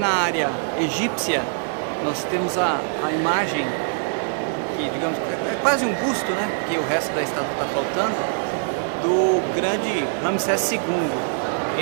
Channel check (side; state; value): left; silent; digital silence